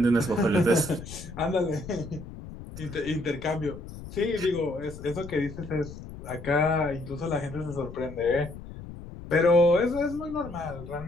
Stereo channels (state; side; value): noise; left; rumble, 13 dB below the sound